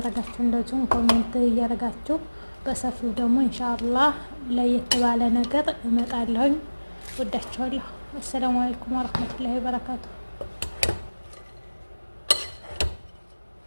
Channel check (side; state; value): both; inverted; correlation -1.00